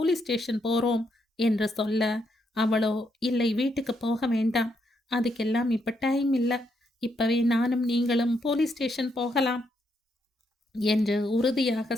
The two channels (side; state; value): both; normal; correlation 0.78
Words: ஸ்டேஷன் போறோம் என்று சொல்ல, அவளோ இல்லை வீட்டுக்கு போக வேண்டாம், அதுக்கெல்லாம் இப்ப டைம் இல்லை, இப்பவே நானும் நீங்களும் போலீஸ் ஸ்டேஷன் போகலாம் என்று உறுதியாக